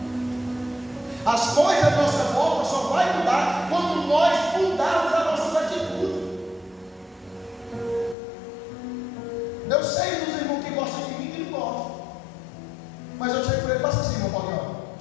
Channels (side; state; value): right; drops out; at 8.2 s